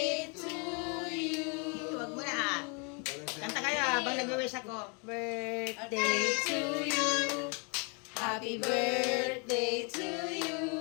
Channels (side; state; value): right; quieter; 34.9 dB